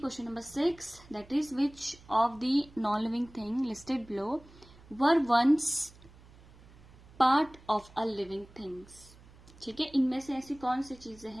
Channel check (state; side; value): noise; right; hum, 23 dB below the sound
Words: number 6, that is which of the non living thing listed below were once part of a living things. ठीक है, इनमें से ऐसी कौन सी चीजें